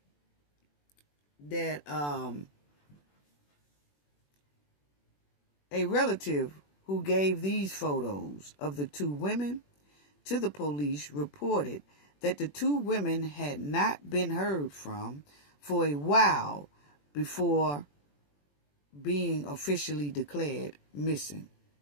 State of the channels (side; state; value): right; late; 21 ms